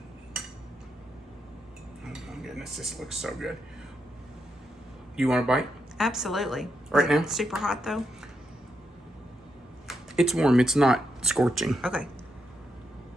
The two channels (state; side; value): normal; both; correlation 0.82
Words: Oh my goodness, this looks so good. You want a bite? Absolutely. Right now? Super hot though? It's warm, it's not scorching. Okay.